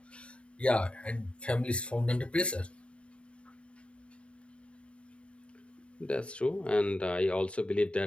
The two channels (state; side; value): late; right; 0.059 ms